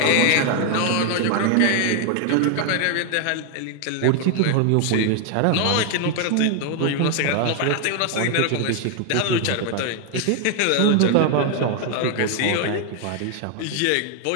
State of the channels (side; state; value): both; different; correlation 0.00